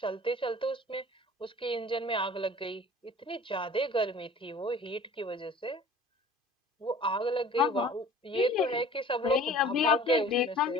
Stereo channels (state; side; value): normal; both; correlation 0.46